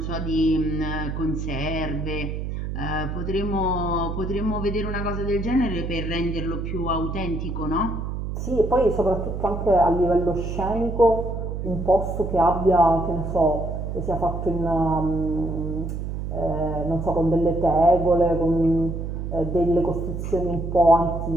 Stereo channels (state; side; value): noise; right; hum, 4 dB below the sound